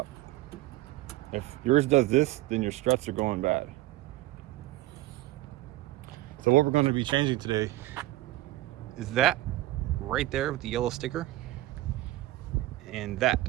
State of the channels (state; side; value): quieter; left; 16.9 dB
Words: If yours does this, then your struts are going bad. So what we're going to be changing today is that right there with the yellow sticker, and that